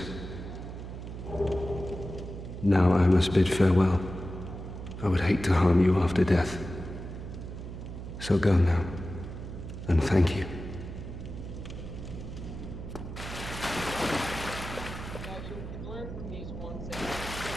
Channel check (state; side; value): noise; right; hum, 9 dB below the sound